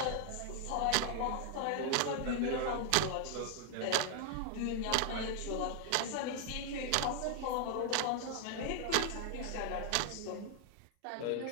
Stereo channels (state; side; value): different; both; correlation 0.00